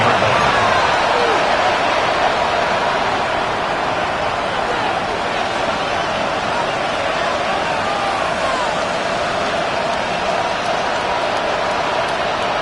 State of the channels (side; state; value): both; identical; correlation 1.00